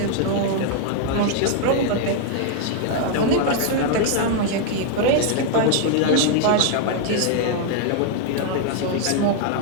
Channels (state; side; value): different; both; correlation 0.00